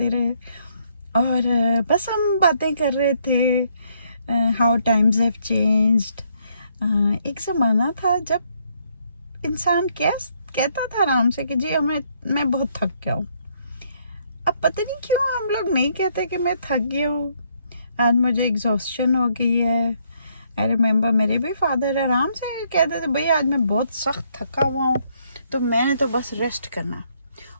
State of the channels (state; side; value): inverted; both; correlation -0.70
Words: रहे और बस हम बातें कर रहे थे। How times have changed. एक ज़माना था जब इंसान कहता था आराम से कि जी मैं बहुत थक गया हूँ। अब पता नहीं क्यों हम लोग नहीं कहते कि मैं थक गया हूँ। आज मुझे एग्जॉस्शन हो गई है। आई रिमेंबर मेरे भी फादर आराम से कहते थे, भाई आज मैं बहुत सख्त थका हुआ हूँ, तो मैंने तो बस रेस्ट करना।